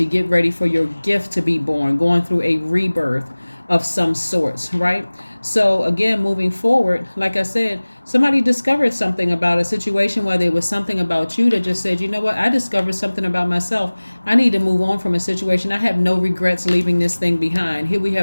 get ready for your gift to be born, going through a rebirth of some sorts, right? So again, moving forward, like I said, somebody discovered something about a situation, whether it was something about you that just said, you know what, I discovered something about myself. I need to move on from a situation. I have no regrets leaving this thing behind. Here we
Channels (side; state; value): both; inverted; correlation -1.00